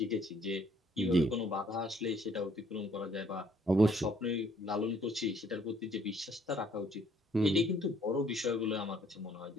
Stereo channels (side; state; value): both; normal; correlation 0.63